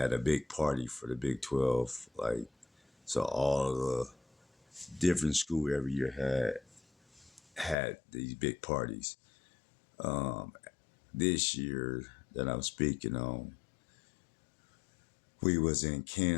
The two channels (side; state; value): right; drops out; at 7.8 s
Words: a big party for the Big 12. So all the different school every year had these big parties. This year that I'm speaking on, we was in